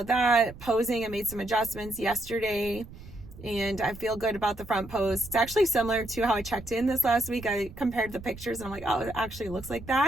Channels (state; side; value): noise; right; rumble, 16 dB below the sound